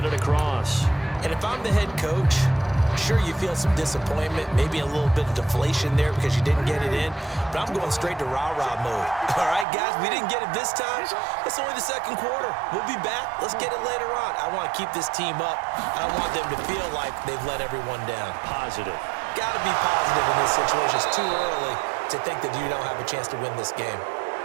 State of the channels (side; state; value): left; drops out; at 9.7 s